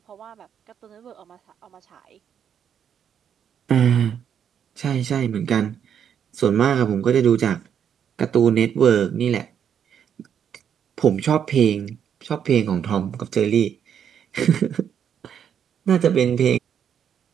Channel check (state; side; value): quieter; left; 8.4 dB